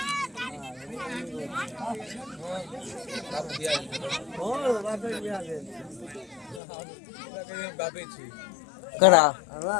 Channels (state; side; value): drops out; right; at 6.6 s